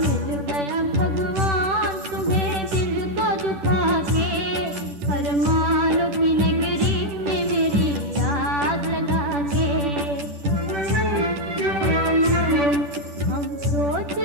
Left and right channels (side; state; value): left; late; 10 ms